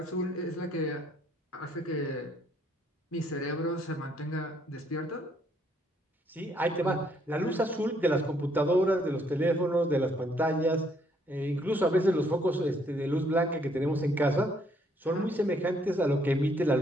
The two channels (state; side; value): normal; both; correlation 0.68